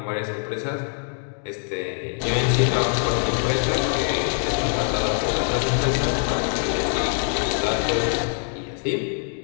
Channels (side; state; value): right; silent; 59 dB below the other